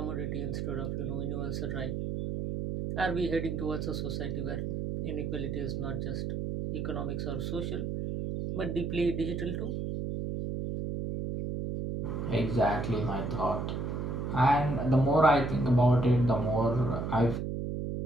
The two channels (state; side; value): noise; right; hum, 3 dB below the sound